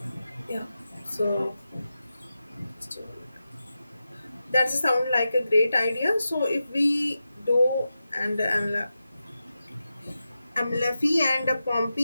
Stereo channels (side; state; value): both; inverted; correlation -0.91